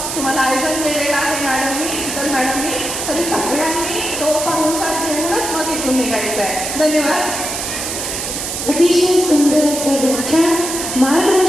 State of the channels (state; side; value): noise; right; hiss, 4 dB below the sound